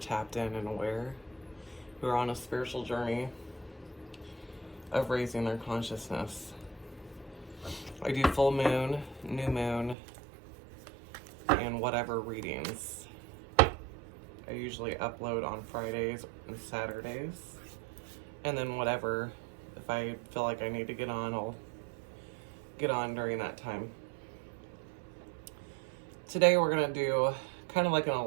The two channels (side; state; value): left; drops out; at 10.0 s